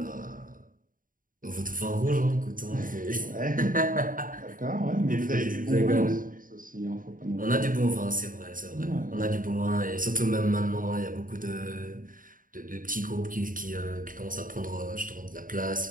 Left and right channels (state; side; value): late; left; 0.40 ms